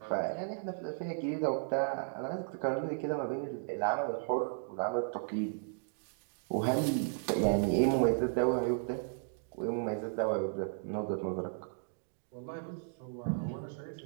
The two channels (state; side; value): silent; left; digital silence